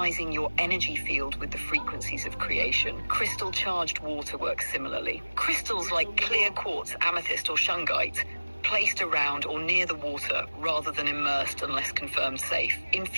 your energy field with the frequencies of creation. Crystal-charged water works similarly. Crystals like clear quartz, amethyst, or shungite placed around or near the water rather than immersed unless confirmed safe.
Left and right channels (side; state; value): both; inverted; correlation -1.00